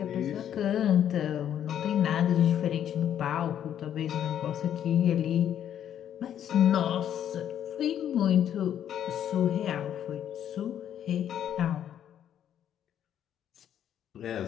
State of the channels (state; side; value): quieter; right; 10.0 dB